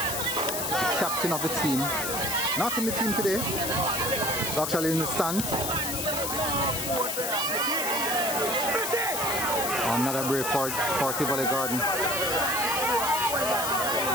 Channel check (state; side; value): noise; left; hiss, 2 dB below the sound